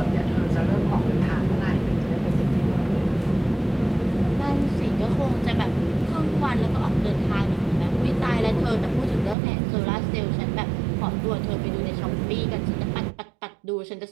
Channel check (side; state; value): left; drops out; at 9.3 s